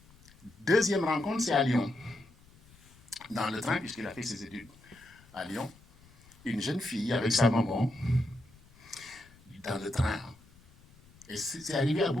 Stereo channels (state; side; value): noise; left; rumble, 26 dB below the sound